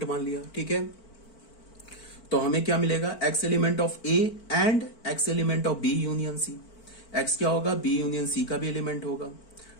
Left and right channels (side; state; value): right; late; 4.5 ms